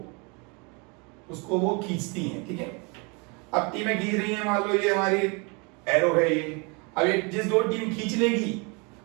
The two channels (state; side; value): quieter; left; 31.3 dB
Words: उसको वो खींचती हैं. ठीक है. अब टीमें खींच रही हैं, मान लो ये हमारी एरो है ये. अब ये जिस दो टीम खींच लेगी